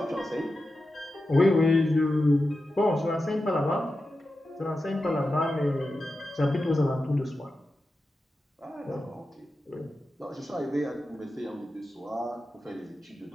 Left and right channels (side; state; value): both; normal; correlation 0.91